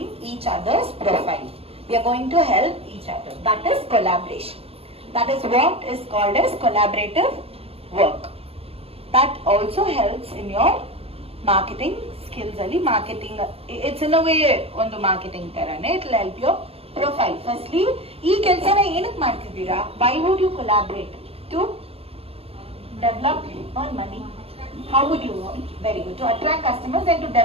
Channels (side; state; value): left; late; 0.28 ms